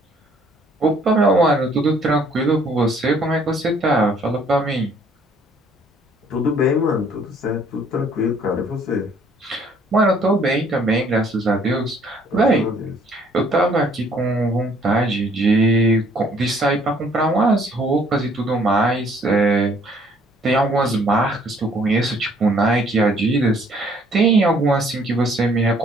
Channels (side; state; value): both; normal; correlation 0.62